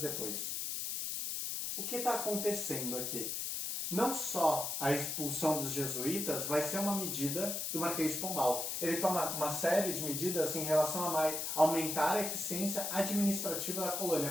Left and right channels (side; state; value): left; noise; hiss, 2 dB below the sound